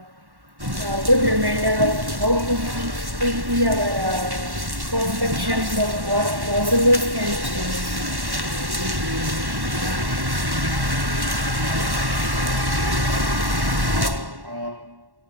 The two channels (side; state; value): left; late; 1.1 ms